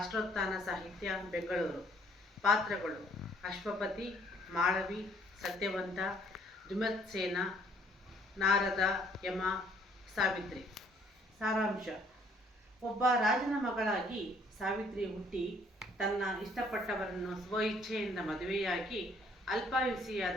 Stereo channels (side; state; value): both; normal; correlation 0.62